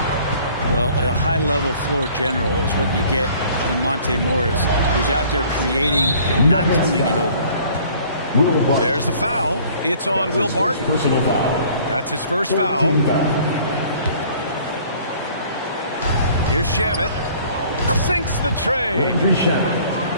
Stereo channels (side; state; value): both; inverted; correlation -0.54